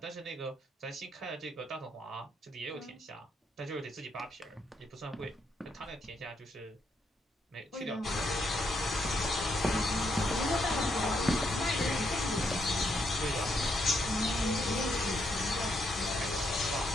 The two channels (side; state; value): both; normal; correlation 0.76